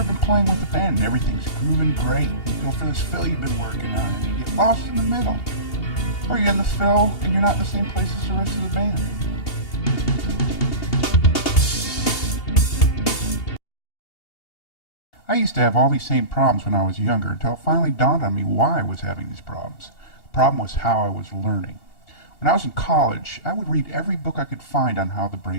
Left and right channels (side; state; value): right; late; 2.8 ms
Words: been playing with a band and everything's grooving great? You go for this fill you've been working on and you get lost in the middle. Or you're in the fill and you're not in the same place as the rest of the band. I used to have all these same problems when I was younger until it finally dawned on me why I was having these problems. The problem was how I was learning. When I was in college, I would read every book I could find on how the